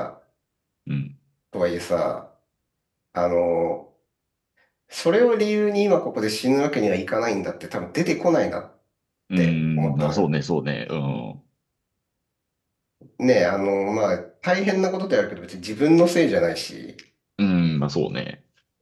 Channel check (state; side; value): identical; both; correlation 1.00